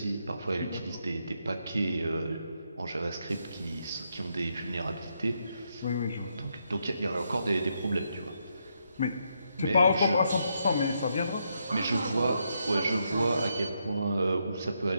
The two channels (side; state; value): both; inverted; correlation -0.79